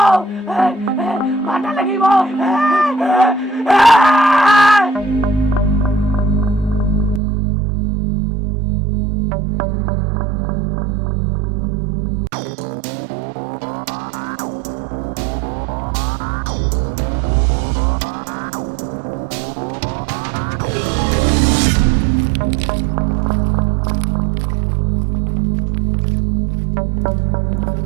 मारने लगी वो।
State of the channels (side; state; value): left; drops out; at 7.2 s